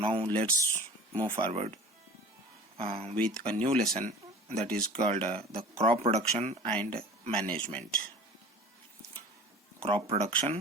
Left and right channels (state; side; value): normal; both; correlation 0.42